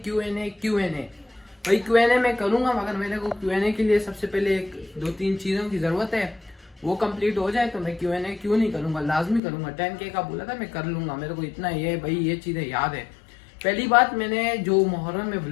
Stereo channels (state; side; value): drops out; right; at 9.4 s